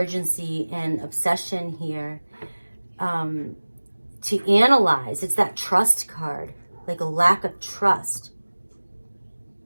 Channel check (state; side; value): inverted; both; correlation -1.00